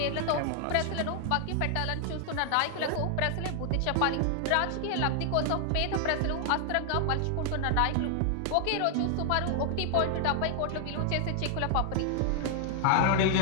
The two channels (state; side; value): different; both; correlation 0.00